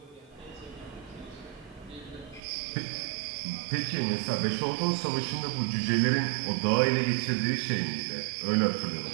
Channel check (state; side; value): drops out; left; at 2.4 s